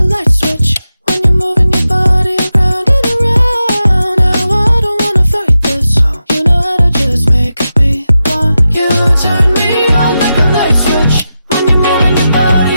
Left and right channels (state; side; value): inverted; both; correlation -0.90